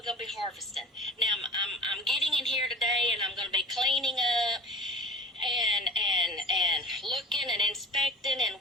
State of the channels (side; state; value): both; normal; correlation 0.39